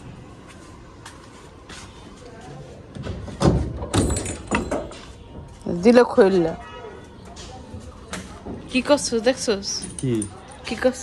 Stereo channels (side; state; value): both; identical; correlation 1.00